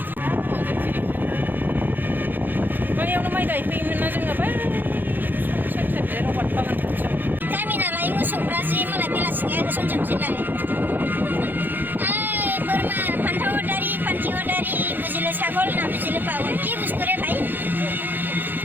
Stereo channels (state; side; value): late; left; 0.090 ms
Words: बैयावनो माइ गायफैयोमोन ना जोङो बै सेर रबाट बागान खाथियाव। गामि नालाय मोसौफ्रा जि मालाय बेलासिनिया होसनजोबसैलाय। बोरमा फान्थाव दारि फान्थिव दारि बुजिले ছাগল না বুঝিলে পাগল কি বুঝতো রে ভাই